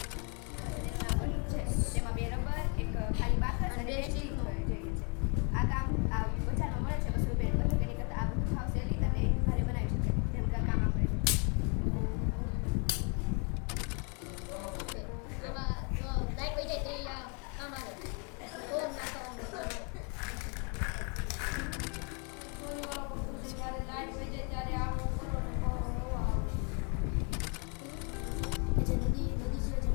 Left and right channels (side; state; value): right; quieter; 36.0 dB